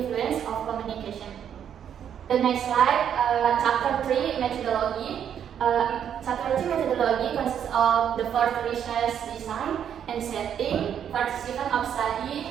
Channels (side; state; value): left; quieter; 8.9 dB